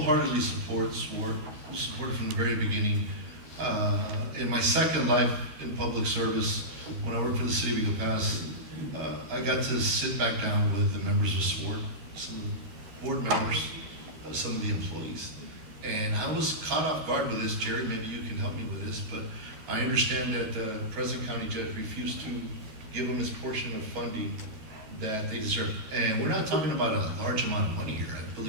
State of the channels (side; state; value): left; late; 13 ms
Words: support SWORD. We support it from the very beginning. In my second life in public service, when I worked for the city of Eagle Pass, I got to sit back down with the members of SWORD, some of the board members, some of the employees. And I was caught off guard with this. Jerry, maybe you can help me with this, but I understand that the present county judge refused to give them his portion of funding that they deserve. And we're not talking about a large amount of money here. I